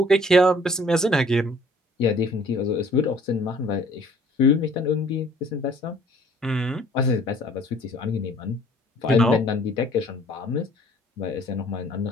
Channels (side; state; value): both; normal; correlation 0.56